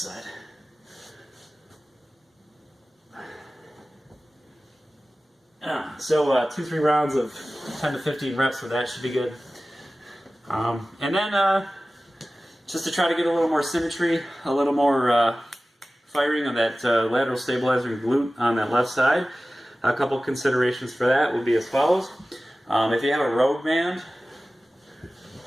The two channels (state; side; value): normal; both; correlation 0.97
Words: So 2-3 rounds of 10 to 15 reps with that should be good. And then just to try to get a little more symmetry, a little more firing on that lateral stabilizer glute on that left side, a couple considerations for that would be as follows. If you have a road band,